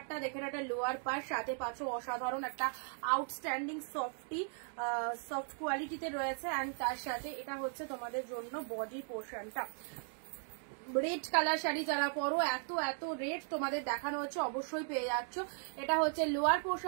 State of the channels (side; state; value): left; silent; 53 dB below the other